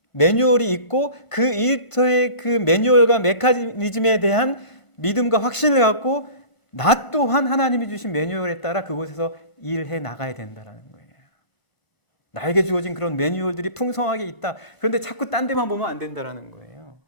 매뉴얼이 있고 그 일터의 그 매뉴얼과 메커니즘에 대한 믿음과 확신을 갖고 나 또한 하나님이 주신 매뉴얼에 따라 그곳에서 일해 나가야 된다는 거예요. 나에게 주어진 그런 매뉴얼들이 풍성하게 있다. 그런데 자꾸 딴 데만 보면 안 된다는 거예요.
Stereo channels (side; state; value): right; late; 1.5 ms